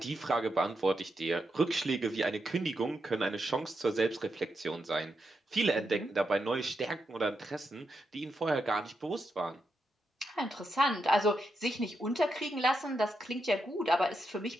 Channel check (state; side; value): normal; both; correlation 0.84